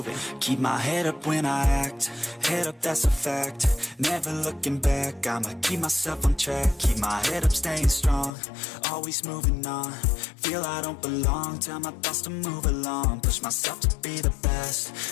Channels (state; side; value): drops out; right; at 8.3 s